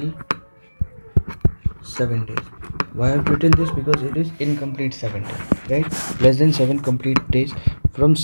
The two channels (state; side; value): inverted; both; correlation -1.00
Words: 7 days. Why I've written this? Because it is incomplete 7 days, right? Less than 7 complete days. From